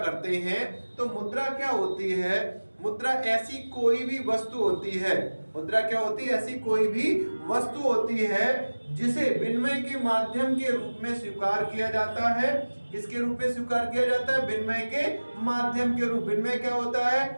हैं। तो मुद्रा क्या होती है? मुद्रा ऐसी कोई भी वस्तु होती है। मुद्रा क्या होती है? ऐसी कोई भी वस्तु होती है जिसे विनिमय के माध्यम के रूप में स्वीकार किया जाता है। किसके रूप में स्वीकार किया जाता है? विनिमय के माध्यम के रूप। विनिमय क्या होता है?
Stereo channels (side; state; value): both; inverted; correlation -1.00